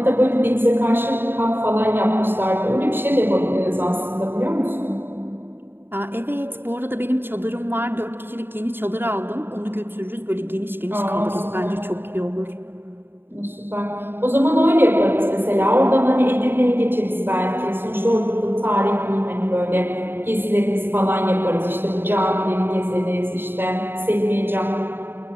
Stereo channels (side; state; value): left; late; 0.10 ms